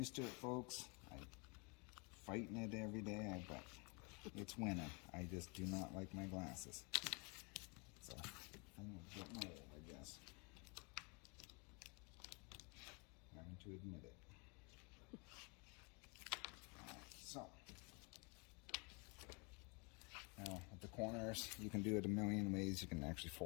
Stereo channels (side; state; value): right; quieter; 31.8 dB